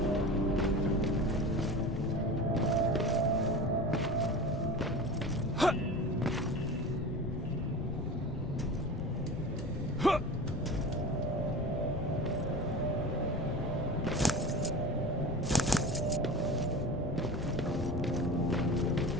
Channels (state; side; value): noise; left; rumble, 6 dB below the sound